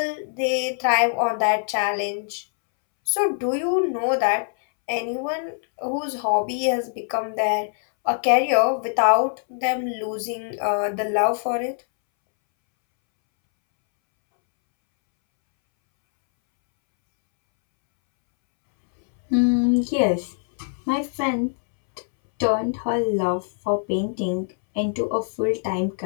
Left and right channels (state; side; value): silent; right; 63 dB below the other